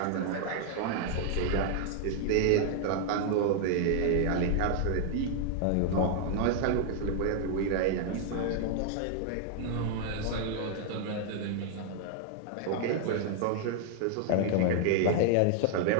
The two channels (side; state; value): both; different; correlation 0.00